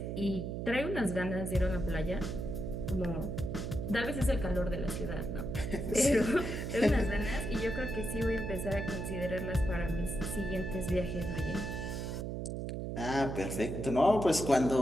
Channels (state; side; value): noise; right; hum, 4 dB below the sound